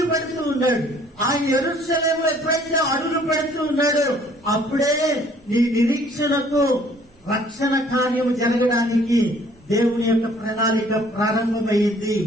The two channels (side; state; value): both; normal; correlation 0.58